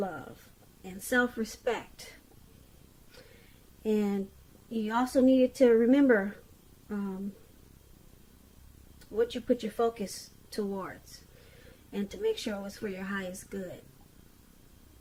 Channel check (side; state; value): both; identical; correlation 1.00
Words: and self-respect. And you also needed to remember what you put your focus towards, and to make sure it was for your highest good.